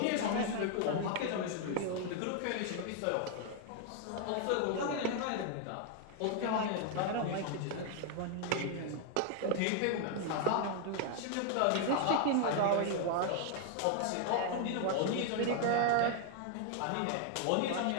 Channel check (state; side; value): different; both; correlation 0.00